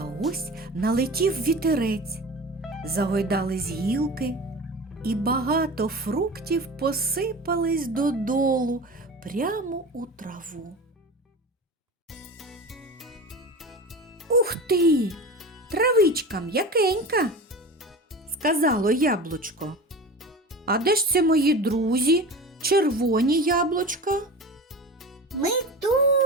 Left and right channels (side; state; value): both; normal; correlation 0.32